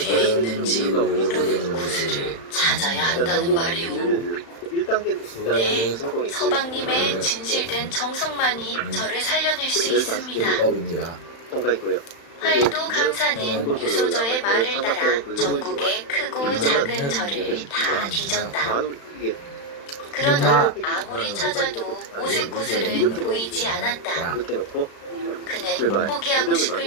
있는지 모르는 구슬을 찾아야 한다는 말이오. 네, 서방님의 진실된 정성만이 저를 살려낼 수 있습니다. 팔도감사는 유소저의 말을 따라 전국의 크고 작은 절을 다 뒤졌다. 그러나 아무리 찾아도 오색 구슬은 보이지 않았다. 그는 포기하고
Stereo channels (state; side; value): late; right; 35 ms